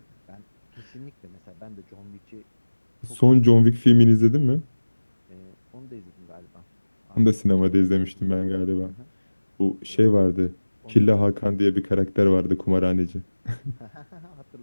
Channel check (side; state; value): both; inverted; correlation -1.00